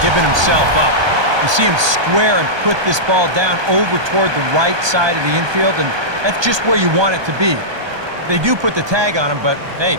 giving himself up. You see him square and put this ball down over toward the right side of the infield, and that's just where you want it to be. They do put the tag on him, but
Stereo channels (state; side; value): late; left; 1.2 ms